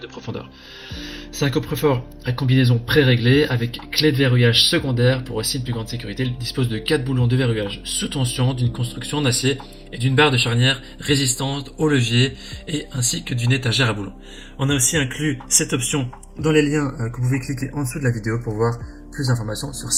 de profondeur. C'est un coffre-fort à combinaison pré-réglée avec clé de verrouillage secondaire pour aussi une plus grande sécurité. Il dispose de 4 boulons de verrouillage sous tension, d'une construction en acier et d'une barre de charnière résistante au levier et ainsi que d'une étagère à boulons. On a aussi inclus cette option dans les liens que vous pouvez cliquer en dessous de la vidéo pour voir plus d'informations sur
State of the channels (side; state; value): both; identical; correlation 1.00